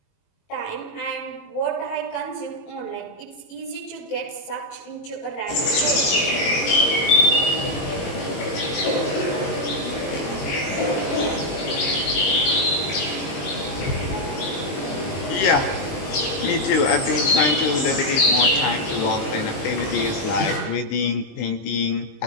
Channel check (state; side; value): late; right; 21 ms